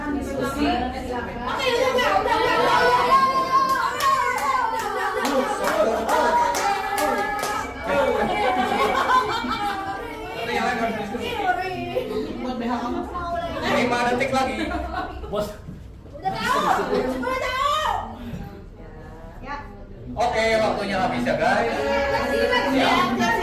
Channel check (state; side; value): identical; both; correlation 1.00